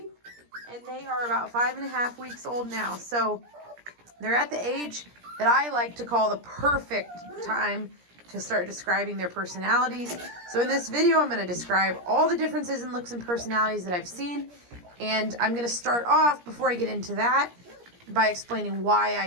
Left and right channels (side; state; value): left; late; 17 ms